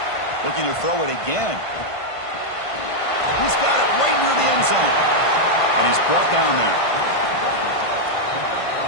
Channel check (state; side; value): late; right; 1.5 ms